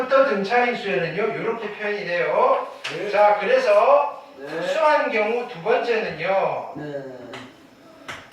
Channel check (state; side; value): identical; both; correlation 1.00